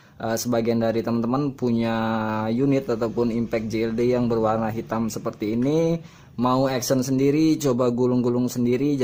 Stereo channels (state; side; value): identical; both; correlation 1.00